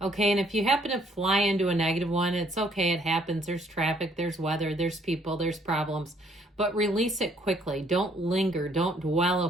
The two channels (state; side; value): normal; both; correlation 0.64